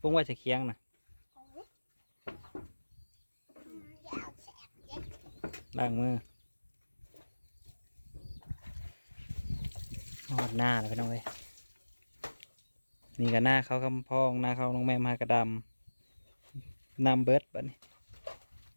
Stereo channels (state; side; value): inverted; both; correlation -1.00